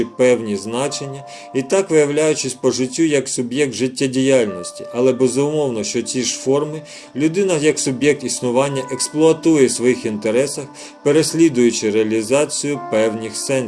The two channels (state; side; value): identical; both; correlation 1.00